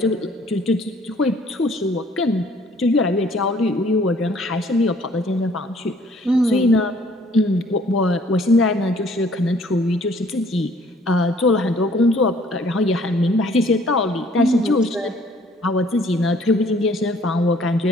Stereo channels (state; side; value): normal; both; correlation 0.58